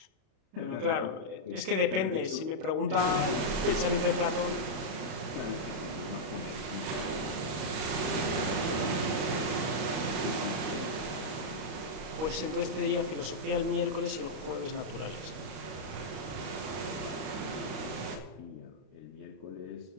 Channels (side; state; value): left; late; 32 ms